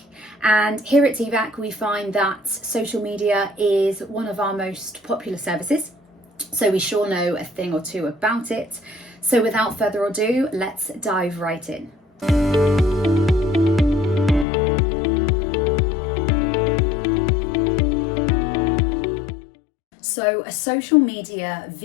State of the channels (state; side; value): drops out; right; at 14.5 s